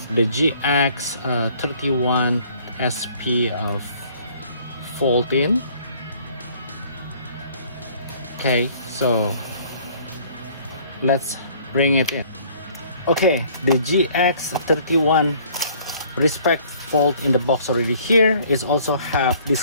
the GX-31 SP of Voltes. Okay, so let's bring it in. Okay, the GX-31 respect Volt in the box already here is also have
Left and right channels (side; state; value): both; inverted; correlation -0.57